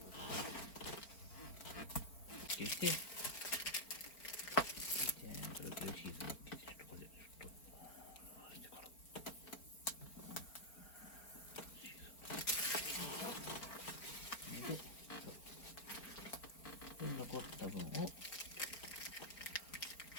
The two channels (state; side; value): late; right; 4.4 ms